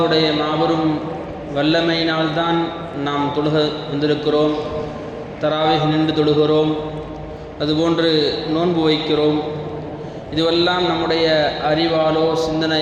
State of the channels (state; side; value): identical; both; correlation 1.00